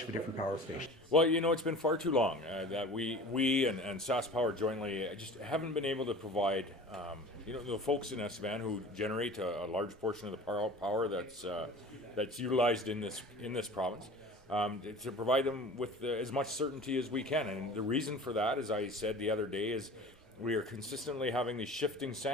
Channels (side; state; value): both; normal; correlation 0.39